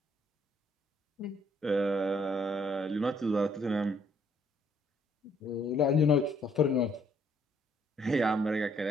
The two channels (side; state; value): both; normal; correlation 0.66